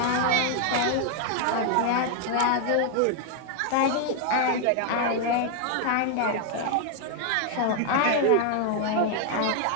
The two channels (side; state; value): both; different; correlation 0.00